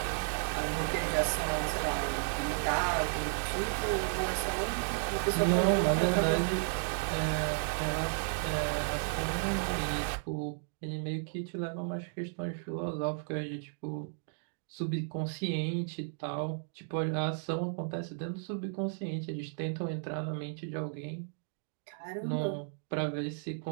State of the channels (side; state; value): left; silent; digital silence